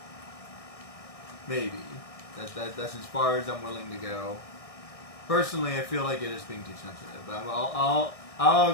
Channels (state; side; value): late; right; 1.6 ms